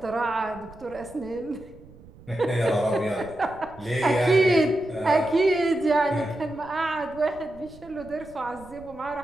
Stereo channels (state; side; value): noise; right; rumble, 21 dB below the sound